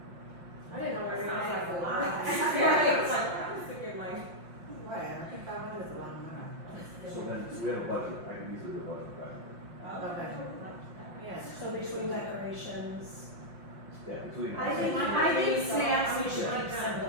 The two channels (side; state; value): left; late; 5.4 ms